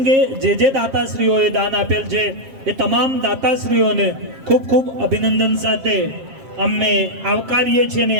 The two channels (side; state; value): left; late; 7.5 ms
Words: જે દાતાશ્રીઓએ દાન આપેલ છે એ તમામ દાતાશ્રીઓને ખૂબ ખૂબ અભિનંદન સાથે અમે આવકારીએ છીએ અને